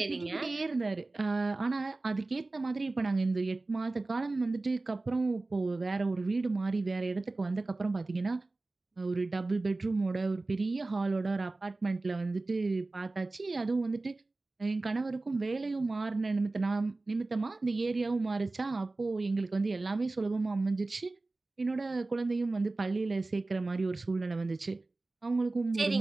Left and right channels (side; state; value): left; quieter; 3.2 dB